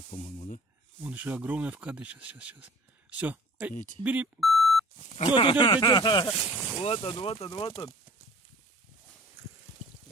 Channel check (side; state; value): both; normal; correlation 0.48